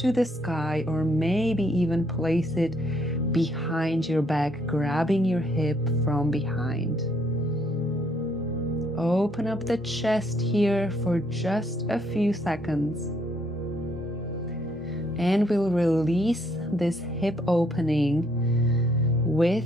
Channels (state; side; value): normal; both; correlation 0.69